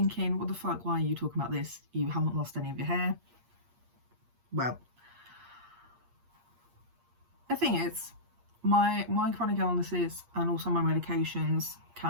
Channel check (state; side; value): late; left; 8.5 ms